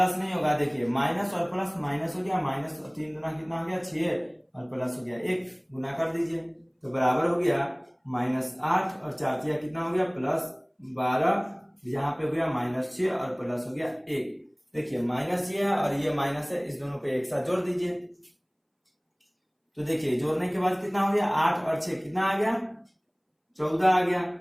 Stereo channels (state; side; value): identical; both; correlation 1.00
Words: नहीं होगा, देखिए माइनस और प्लस माइनस हो गया, माइनस और 3 गुना कितना हो गया 6 और प्लस हो गया 1, गुना कर दीजिए तो बराबर हो गया -8 और 4 कितना हो गया +12, यहाँ पे हो गया -6 और प्लस हो गया 1। देखिए माइनस ये है और ये माइनस है, इस दोनों को एक साथ जोड़ दीजिए। तो देखिए जोड़ने के बाद कितना हो गया 8 और 6 कितना आ गया 14 आ गया